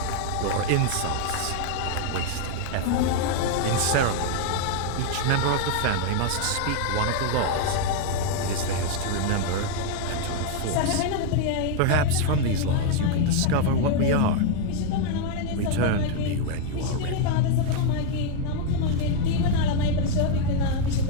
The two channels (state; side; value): different; both; correlation 0.00